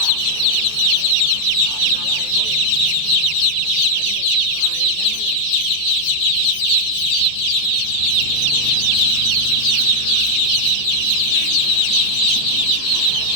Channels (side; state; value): right; late; 14 ms